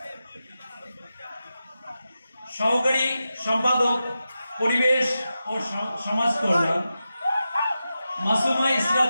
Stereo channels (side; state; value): both; inverted; correlation -0.91